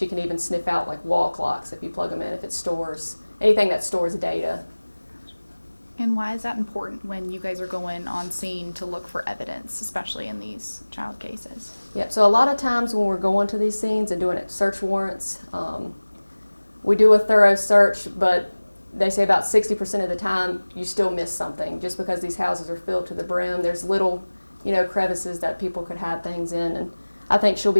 can even sniff out like wall clocks if you plug them in, if it stores anything that stores data. And why is that important when you guys are going on scene to look for evidence, especially in these child cases? Yep, so a lot of times when we're going to these scenes and doing search warrants, we do a thorough search, but they say about 60% of the time you still miss something just because these houses are filled to the brim. There's little, crevices that people could hide things in, and I think she'll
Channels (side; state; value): both; inverted; correlation -1.00